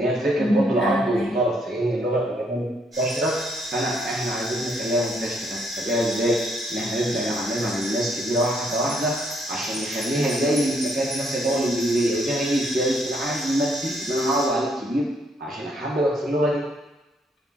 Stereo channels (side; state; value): both; normal; correlation 0.71